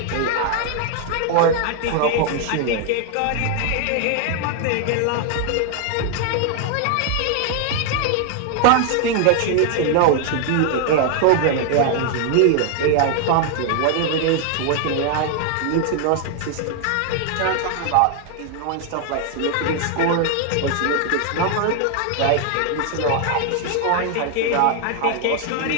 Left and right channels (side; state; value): both; different; correlation 0.00